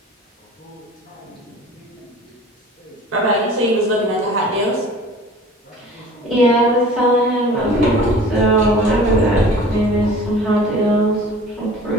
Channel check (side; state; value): both; normal; correlation 0.44